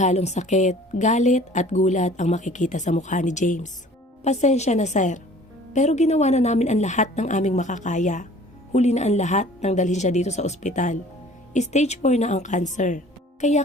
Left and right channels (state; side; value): normal; both; correlation 0.49